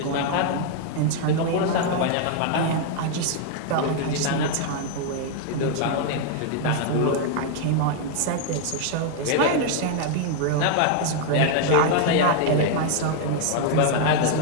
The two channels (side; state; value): both; different; correlation 0.00